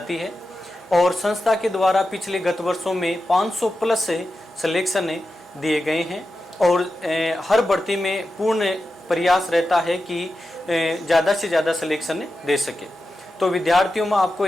है। और संस्था के द्वारा पिछले गत वर्षों में 500 प्लस सिलेक्शन दिए गए हैं और हर भर्ती में पूर्ण प्रयास रहता है कि ज़्यादा से ज़्यादा सिलेक्शन दे सके। तो विद्यार्थियों में आपको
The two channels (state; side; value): normal; both; correlation 0.91